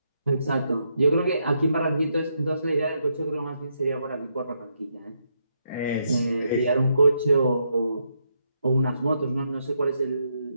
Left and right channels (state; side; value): inverted; both; correlation -0.79